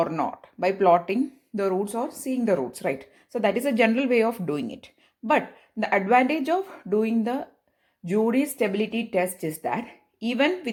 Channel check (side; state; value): both; identical; correlation 1.00